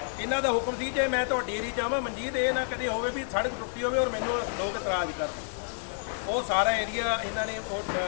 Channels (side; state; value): right; silent; 58 dB below the other